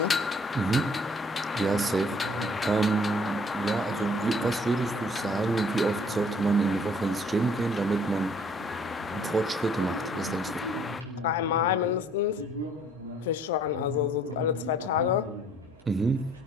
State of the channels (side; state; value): both; normal; correlation 0.58